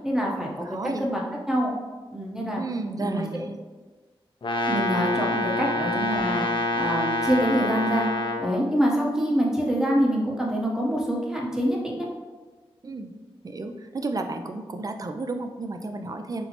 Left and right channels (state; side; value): normal; both; correlation 0.70